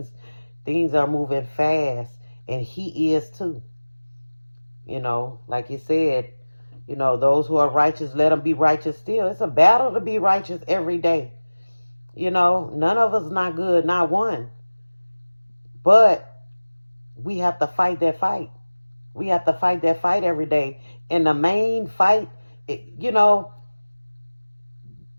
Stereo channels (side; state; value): both; inverted; correlation -1.00